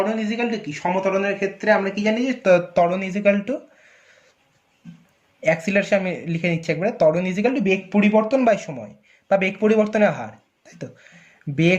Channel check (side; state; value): both; identical; correlation 1.00